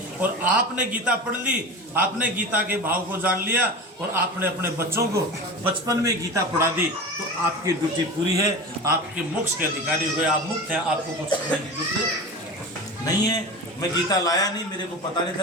और आपने गीता पढ़ ली, आपने गीता के भाव को जान लिया और आपने अपने बच्चों को बचपन में गीता पढ़ा दी, तो आपकी ड्यूटी पूरी है, आपके मोक्ष के अधिकारी हो गए, आप मुक्त हैं, आपको कुछ करने की जरूरत नहीं है। मैं गीता लाया नहीं, मेरे को पता नहीं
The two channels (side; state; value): both; normal; correlation 0.30